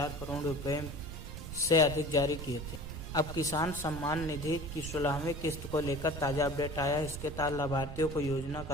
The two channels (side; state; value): right; noise; rumble, 9 dB below the sound